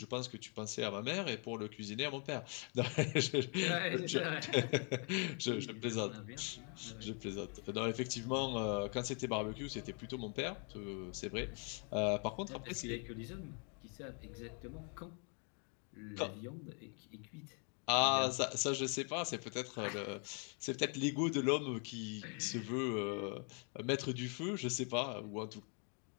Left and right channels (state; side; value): quieter; right; 38.6 dB